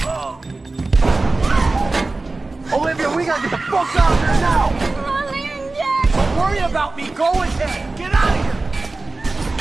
Olivia, we gotta get the fuck out of here now! Don't worry about me. Go ahead. Get out of here!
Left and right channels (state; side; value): quieter; left; 3.3 dB